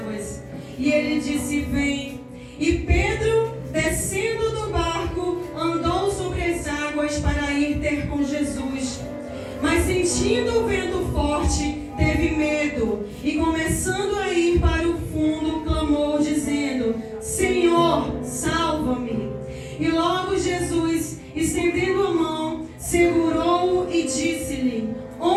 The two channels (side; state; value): both; identical; correlation 1.00